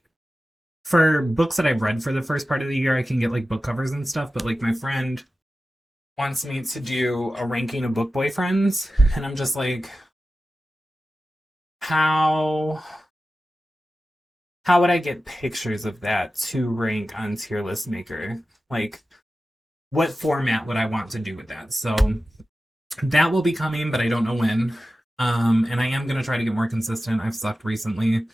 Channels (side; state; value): both; normal; correlation 0.94